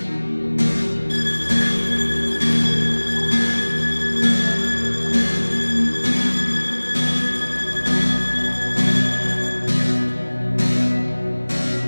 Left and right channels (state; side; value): inverted; both; correlation -1.00